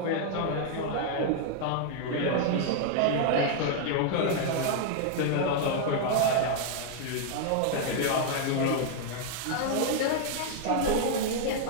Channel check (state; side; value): different; both; correlation 0.00